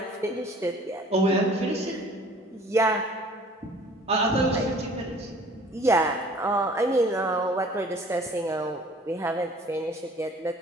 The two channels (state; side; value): normal; both; correlation 0.51